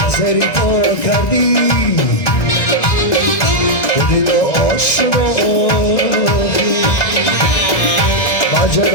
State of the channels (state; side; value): late; right; 2.0 ms